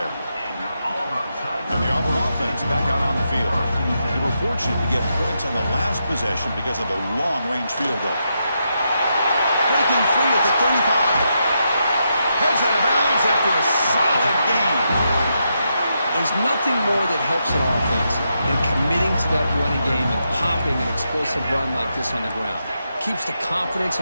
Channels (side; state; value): both; inverted; correlation -0.83